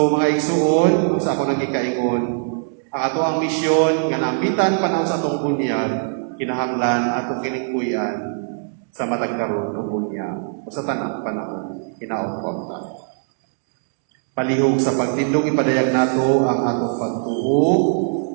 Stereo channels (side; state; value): left; silent; digital silence